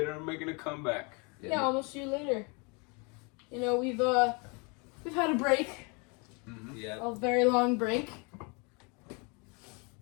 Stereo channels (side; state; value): right; quieter; 31.7 dB